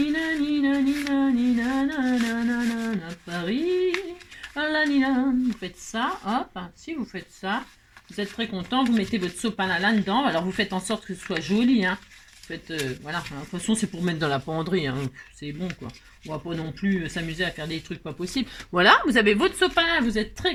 Paris. Vous faites ça, hop, si vous faites ça, vous êtes très content, vous mettez votre sopalin là-dedans, alors vous faites en sorte que ce soit joli, hein. Vous faites, voilà, de toute façon c'est pour mettre dans la penderie, hein. C'est bon quoi, on va pas non plus s'amuser à faire des trucs pas possibles. Voilà, vous avez votre sopalin, vous êtes très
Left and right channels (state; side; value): identical; both; correlation 1.00